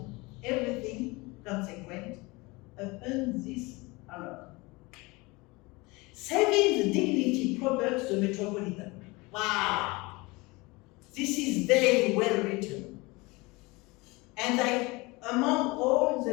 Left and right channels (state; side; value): quieter; right; 24.1 dB